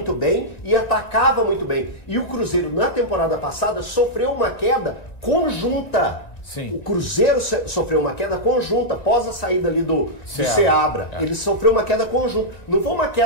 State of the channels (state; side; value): late; right; 1.9 ms